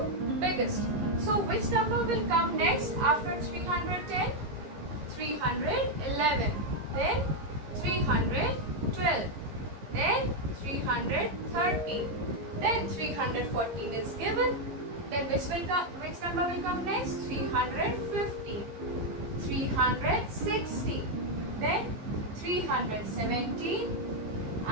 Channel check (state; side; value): late; left; 15 ms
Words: biggest. So which number will come next after 310? 311. Then 312. Then 313. Then 314 is given. Then which number will come next? 350. 360. Then 317